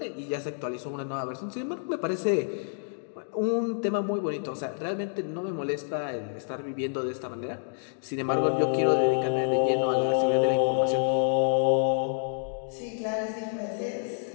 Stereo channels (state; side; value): silent; right; digital silence